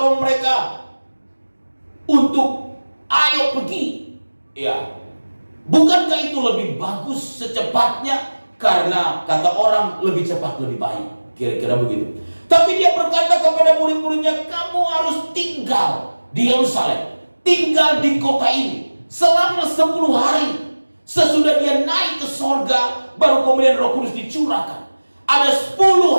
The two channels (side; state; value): both; inverted; correlation -1.00